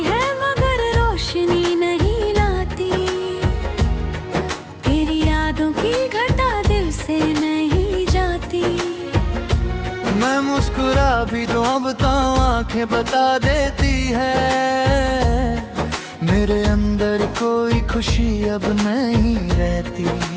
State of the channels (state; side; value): identical; both; correlation 1.00